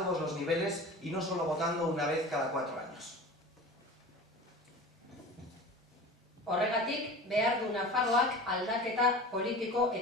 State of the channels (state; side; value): normal; both; correlation 0.36